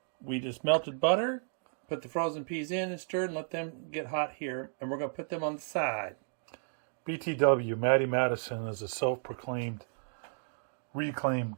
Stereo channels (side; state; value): left; silent; digital silence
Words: we just melted butter, put the frozen peas in and stirred and let them get hot here. And we're going to put them on the side. BTW, Matty Madison is a self-proclaimed, reclaimed